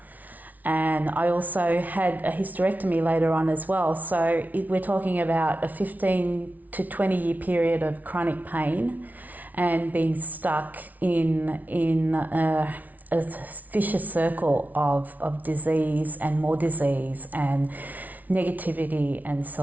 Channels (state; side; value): late; left; 0.076 ms